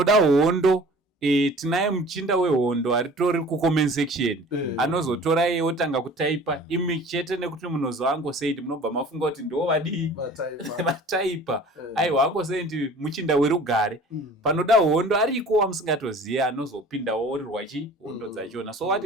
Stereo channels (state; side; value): normal; both; correlation 0.45